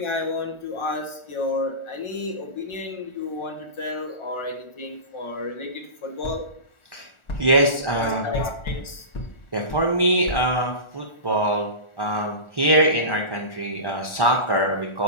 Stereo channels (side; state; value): right; late; 1.4 ms